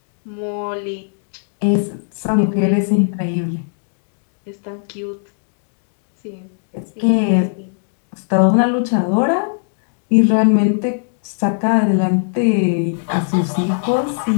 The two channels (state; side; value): silent; right; digital silence